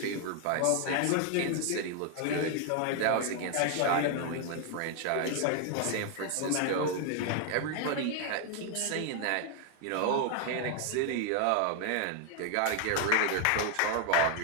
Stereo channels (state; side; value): different; both; correlation 0.00